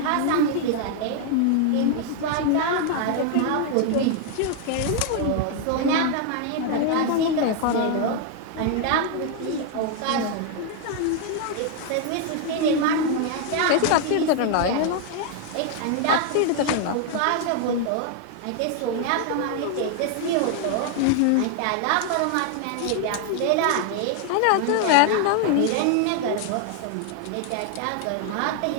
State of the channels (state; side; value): different; both; correlation 0.00